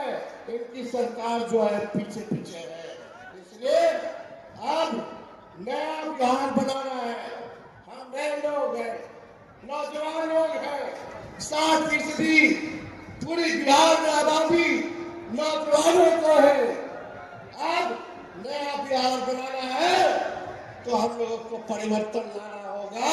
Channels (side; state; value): both; identical; correlation 1.00